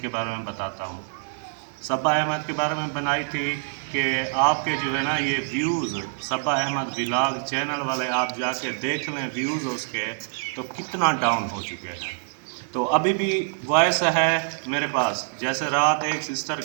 کے بارے میں بتاتا ہوں۔ صبا احمد کے بارے میں بنائی تھی کہ آپ کے جو ہے نا یہ ویوز، صبا احمد ولاگ چینل والے آپ جا کے دیکھ لیں ویوز اس کے تو کتنا ڈاؤن ہو چکے ہیں۔ تو ابھی بھی وائس ہے میرے پاس، جیسے رات ایک سسٹر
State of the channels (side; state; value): left; silent; 57 dB below the other